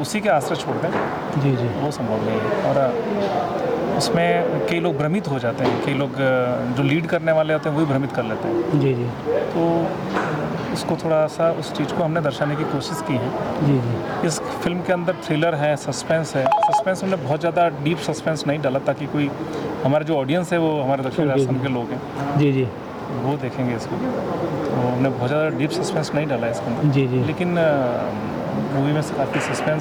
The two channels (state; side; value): identical; both; correlation 1.00